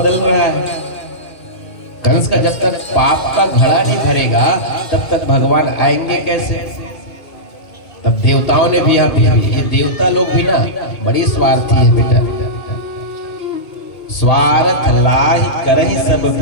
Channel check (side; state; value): right; late; 2.7 ms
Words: रहा है, कंस का जब तक पाप का घड़ा नहीं भरेगा तब तक भगवान आएंगे कैसे? तब देवताओं ने भी ये देवता लोग भी ना बड़ी स्वार्थी है बेटा, स्वार्थ लाहि करहि सब